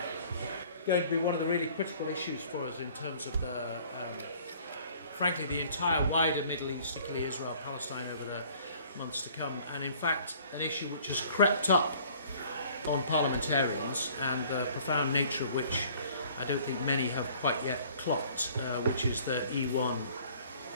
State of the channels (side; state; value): both; inverted; correlation -0.54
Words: going to be one of the really critical issues for us in terms of frankly, the entire wider Middle East, particularly Israel, Palestine, over the months to come. And in fact, an issue which has crept up on parliamentarians, and the profound nature of which I don't think many have quite yet clocked, which is the E1